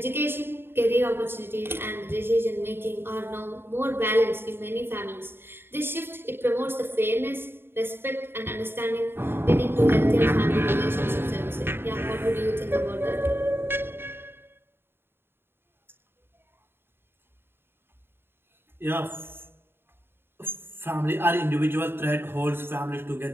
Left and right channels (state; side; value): late; left; 0.11 ms